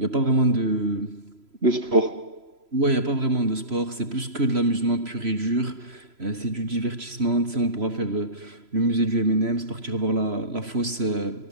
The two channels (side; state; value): left; late; 3.0 ms